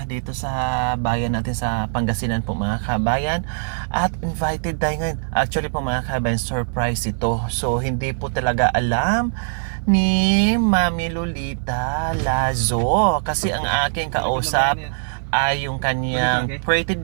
dito sa bayan natin sa Pangasinan po mga kabayan. At invited tayo ngayon. Actually po mga kabayan, surprise ito. So hindi po talaga alam ni Mami Lolita Lazo. Kasi ang aking kausap ay yung kanyang pretty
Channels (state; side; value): silent; left; 56 dB below the other